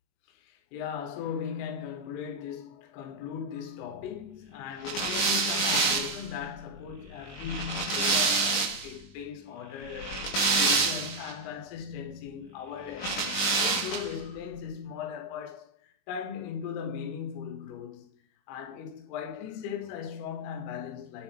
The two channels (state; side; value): late; right; 21 ms